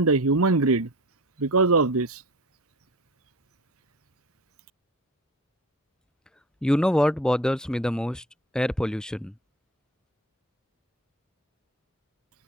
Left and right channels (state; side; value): normal; both; correlation 0.35